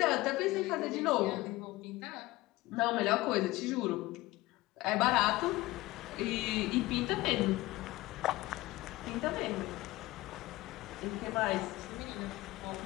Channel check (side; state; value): right; quieter; 19.2 dB